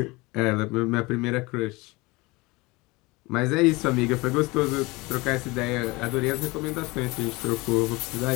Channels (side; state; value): right; quieter; 23.8 dB